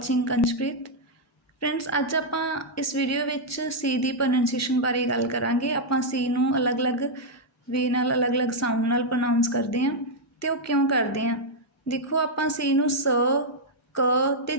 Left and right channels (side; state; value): both; normal; correlation -0.03